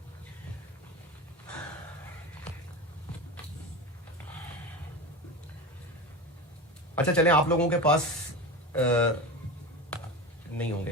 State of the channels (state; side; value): normal; both; correlation 0.25